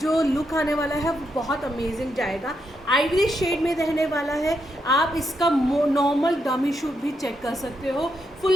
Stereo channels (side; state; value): both; normal; correlation 0.81